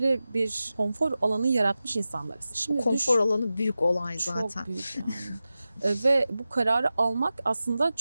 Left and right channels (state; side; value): inverted; both; correlation -0.94